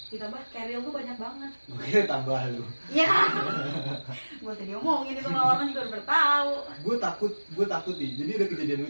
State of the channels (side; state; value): both; inverted; correlation -1.00